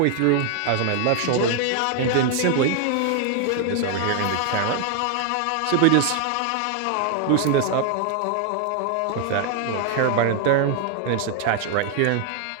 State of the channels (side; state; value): both; different; correlation 0.00